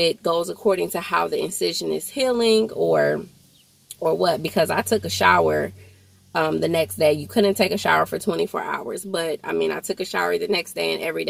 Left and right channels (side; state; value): both; identical; correlation 1.00